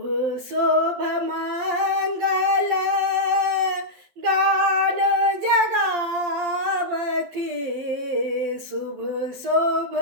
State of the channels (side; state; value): left; late; 12 ms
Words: शोभ मंगल गान जगावथी शुभ शोभ